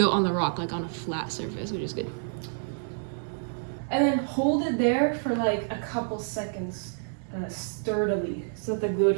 on the rock, like on a flat surface, which is good. And then hold it there for like a couple seconds sturdily so that the glue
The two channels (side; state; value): left; silent; 56 dB below the other